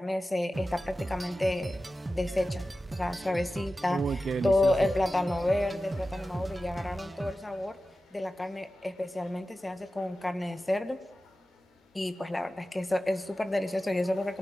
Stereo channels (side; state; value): both; normal; correlation 0.94